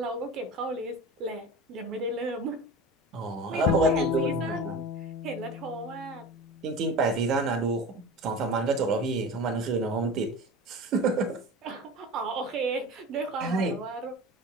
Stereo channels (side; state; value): both; normal; correlation 0.33